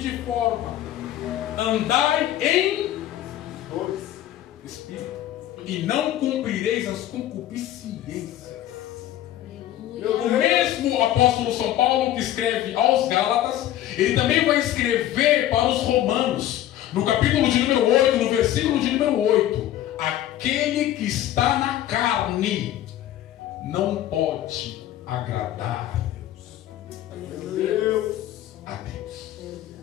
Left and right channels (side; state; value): right; quieter; 12.8 dB